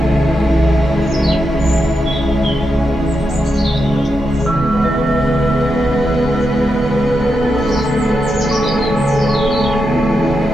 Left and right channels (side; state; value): both; normal; correlation 0.86